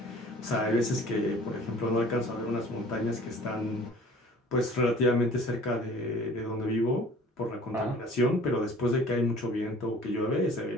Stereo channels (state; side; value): normal; both; correlation 0.49